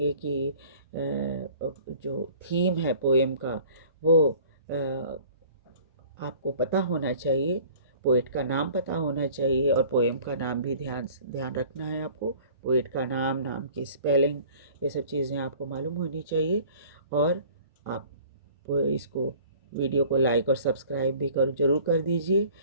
कि जो थीम है पोएम का वो आपको पता होना चाहिए, पोएट का नाम पता होना चाहिए, और पोएम का नाम भी ध्यान रखना है आपको। पोएट का नाम की स्पेलिंग, ये सब चीज़ें आपको मालूम होनी चाहिए। और आप इसको वीडियो को लाइक और सब्सक्राइब भी ज़रूर कर दीजिए,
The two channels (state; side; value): inverted; both; correlation -0.49